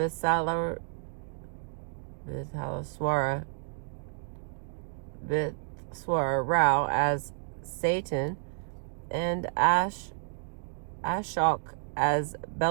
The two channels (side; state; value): left; silent; digital silence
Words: Rao as Satan and Ashok as